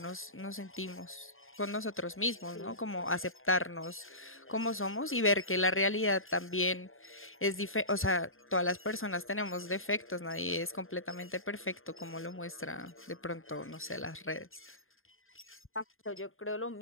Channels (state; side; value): late; right; 0.60 ms